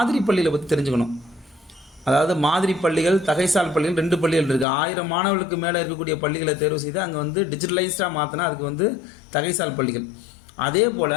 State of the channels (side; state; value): right; drops out; at 4.7 s